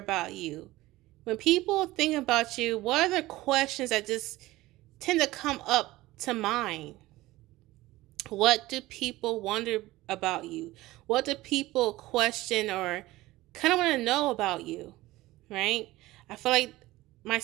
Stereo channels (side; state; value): left; quieter; 18.1 dB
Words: you? When people think about you, what are the questions that just tend to come up to mind? What do people wonder about you? What do people question or kind of want to know about you? Right? I feel like my